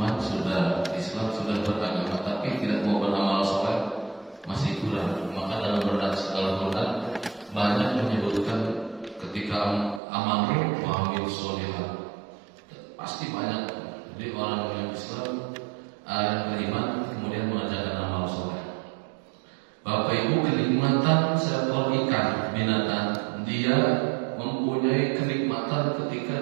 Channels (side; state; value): left; drops out; at 10.0 s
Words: sudah beragama, tapi tidak mau beramal soleh, masih kurang. Maka dalam Al-Quran banyak menyebutkan ketika amalu wa amil solihat, pasti banyak. Jadi orang yang Islam, yang beriman, kemudian mengerjakan amal soleh. Bapak Ibu, kenikmatan seekor ikan binatang, dia mempunyai kenikmatan ketika